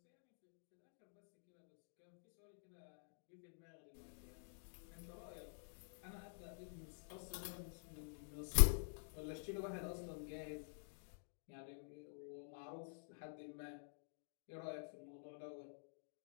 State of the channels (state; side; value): silent; right; digital silence